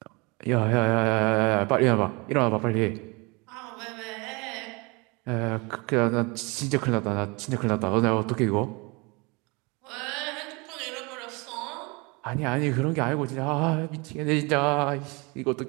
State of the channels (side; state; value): left; quieter; 27.9 dB